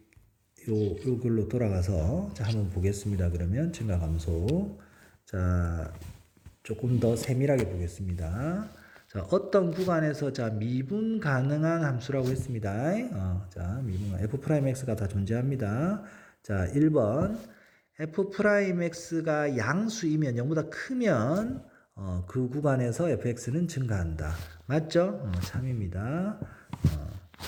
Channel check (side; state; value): both; identical; correlation 1.00